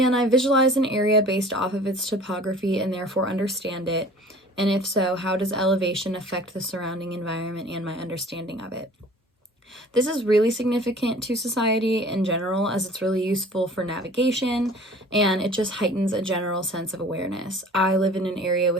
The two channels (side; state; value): both; normal; correlation 0.47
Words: I visualize an area based off of its topography and therefore understand it? And if so, how does elevation affect the surrounding environment and my understanding of it? This is really significant to society in general, as it's really useful for navigation and it just heightens a general sense of awareness. I live in an area